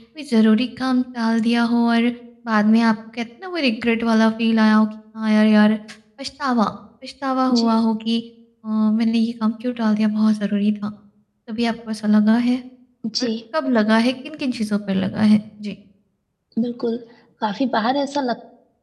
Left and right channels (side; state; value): both; identical; correlation 1.00